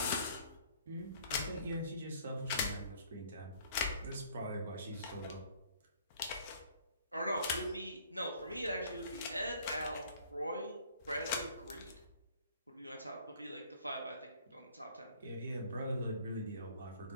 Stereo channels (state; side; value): inverted; both; correlation -0.56